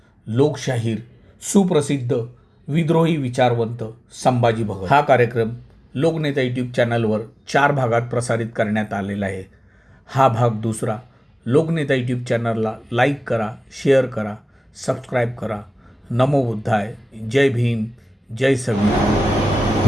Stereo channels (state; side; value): normal; both; correlation 0.97